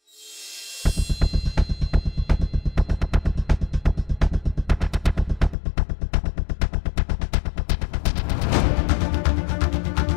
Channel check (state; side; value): drops out; right; at 5.6 s